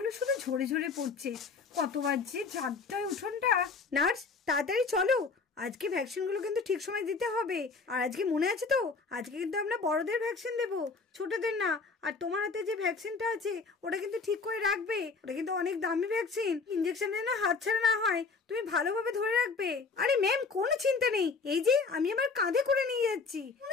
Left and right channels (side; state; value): right; quieter; 4.6 dB